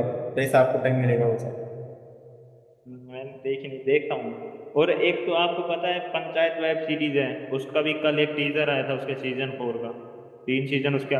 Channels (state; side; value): identical; both; correlation 1.00